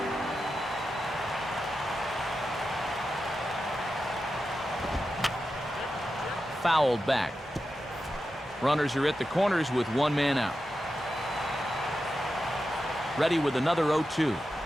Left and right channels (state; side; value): normal; both; correlation 0.90